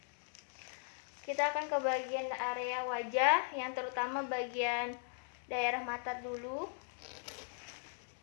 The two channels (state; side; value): silent; right; 52 dB below the other